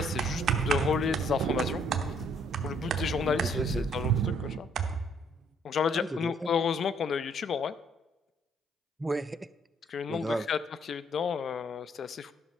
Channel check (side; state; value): both; normal; correlation 0.65